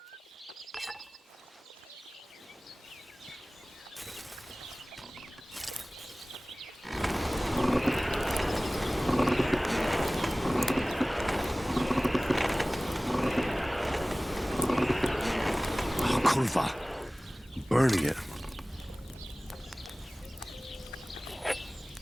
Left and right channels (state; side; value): normal; both; correlation 0.98